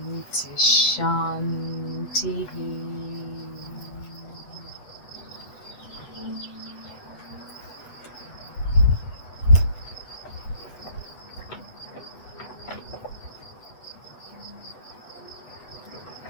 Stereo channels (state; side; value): late; right; 8.1 ms